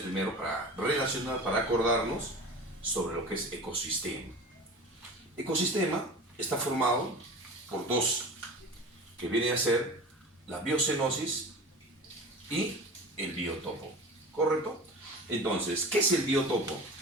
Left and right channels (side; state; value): both; normal; correlation 0.35